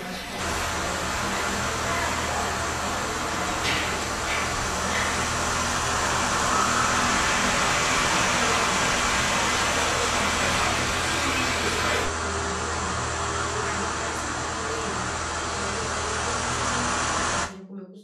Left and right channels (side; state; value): both; identical; correlation 1.00